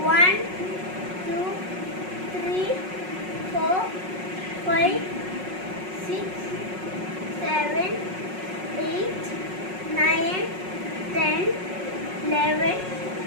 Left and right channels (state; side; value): late; left; 5.4 ms